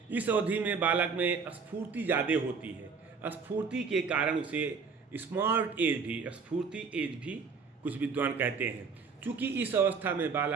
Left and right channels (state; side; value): quieter; left; 5.2 dB